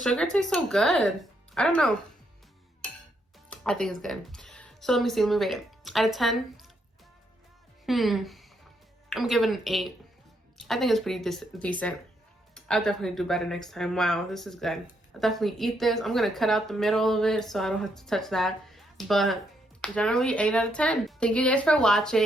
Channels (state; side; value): normal; both; correlation 0.76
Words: tastes so good. I don't know. I think it's good. So let me see, let me rate it. Out of 10, I'm giving it an 8. I think it's pretty decent. I'll definitely do better next time. Wow, this is good. I'll definitely eat this. I'm gonna cut out the middle of it so I don't have to touch that. But generally 8 out of 10. Thank you guys for